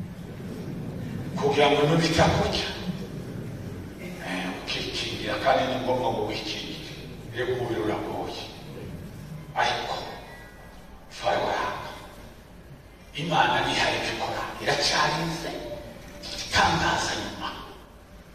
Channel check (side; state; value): both; identical; correlation 1.00